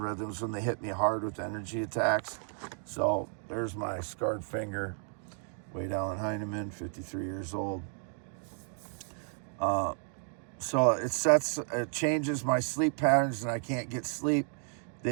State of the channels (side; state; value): left; silent; 56 dB below the other